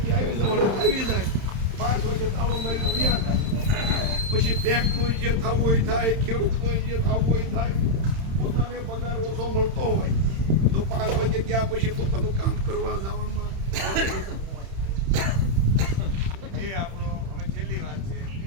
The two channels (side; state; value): left; late; 31 ms